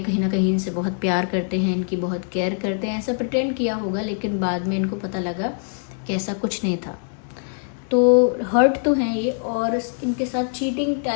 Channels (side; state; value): right; silent; 63 dB below the other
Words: ना कहीं इनसे बहुत प्यार करते हैं, इनकी बहुत केयर करते हैं, ऐसा प्रिटेंड किया होगा। लेकिन बाद में इनको पता लगा कि ऐसा कुछ नहीं था। तो हर्ट तो हैं ये, और इनके साथ चीटिंग